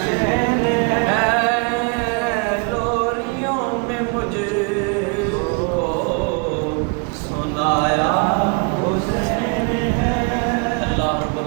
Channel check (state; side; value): quieter; left; 34.9 dB